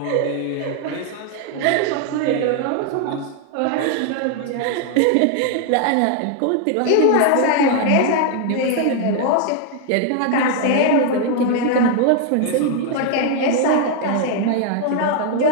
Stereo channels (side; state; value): both; different; correlation 0.00